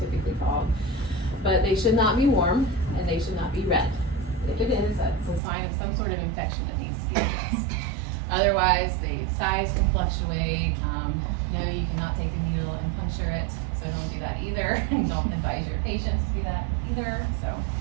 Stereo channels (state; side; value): drops out; left; at 5.4 s